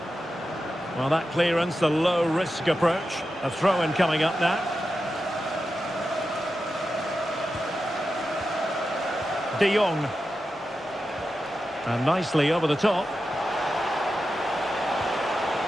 Well, that clearance, the low-risk approach. A throw-in coming up now. De Jong. And nicely over the top.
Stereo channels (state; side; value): normal; both; correlation 0.90